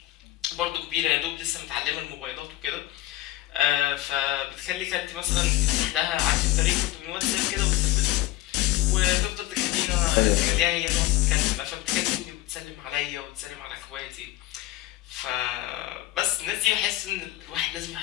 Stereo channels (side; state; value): right; quieter; 16.6 dB